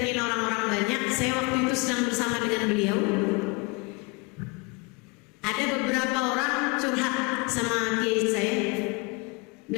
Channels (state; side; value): quieter; right; 28.4 dB